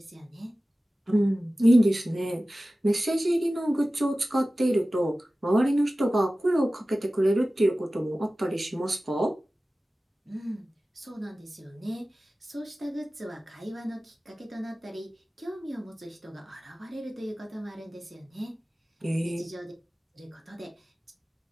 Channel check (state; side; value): normal; both; correlation 0.96